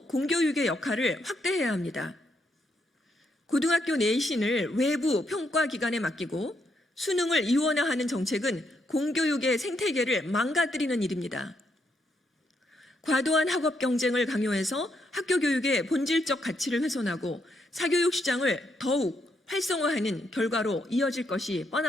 공교육의 역할을 확대해야 합니다. 고등학교 내신을 외부 평가기관에 맡기고 수능을 이원화하는 정책은 공교육의 생태계를 망가뜨리는 일입니다. 과도한 학업 경쟁을 강요해서 학교 교육의 본질적 가치를 훼손하고 사교육 시장을 더욱 활성화하는 결과로 이어질 것이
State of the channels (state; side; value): normal; both; correlation 0.77